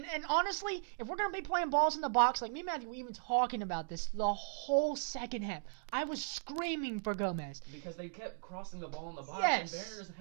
honestly, if we're going to be playing balls in the box, like me and Matthew were even talking about this the whole second half, I was screaming for Gomez. Because they kept crossing the ball in the box, and Werner doesn't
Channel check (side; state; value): left; silent; digital silence